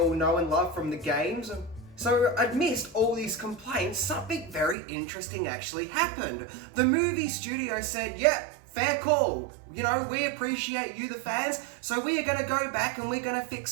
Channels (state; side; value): drops out; left; at 4.8 s